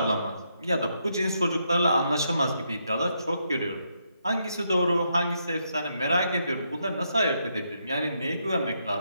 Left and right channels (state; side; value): inverted; both; correlation -0.79